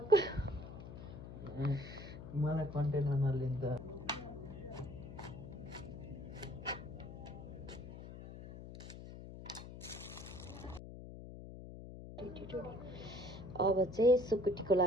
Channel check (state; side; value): noise; left; hum, 12 dB below the sound